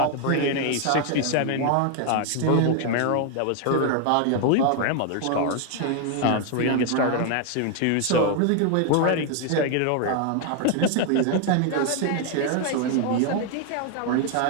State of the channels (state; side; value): different; both; correlation 0.00